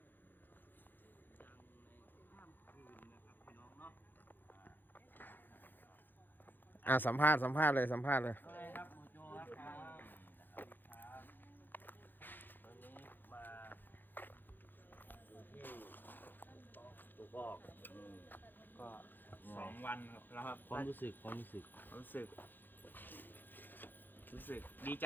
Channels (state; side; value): late; right; 0.091 ms